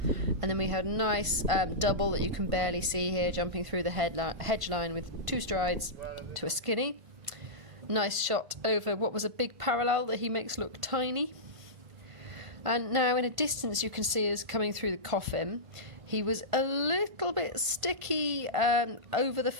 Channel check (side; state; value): left; late; 1.5 ms